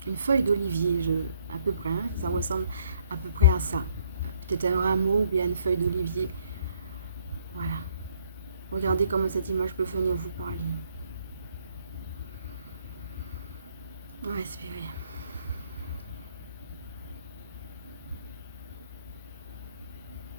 une feuille d'olivier, à peu près, hein, ça ressemble à peu près à ça. Peut-être un rameau ou bien une feuille d'olivier. Voilà. Regardez comment cette image peut venir vous parler. Respirez.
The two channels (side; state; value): both; inverted; correlation -0.65